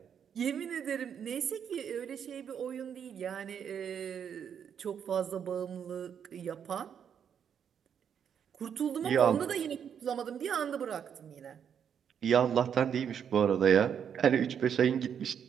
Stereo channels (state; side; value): quieter; left; 8.1 dB